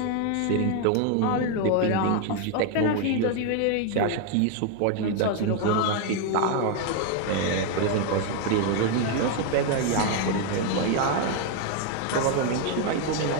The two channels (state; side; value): different; both; correlation 0.01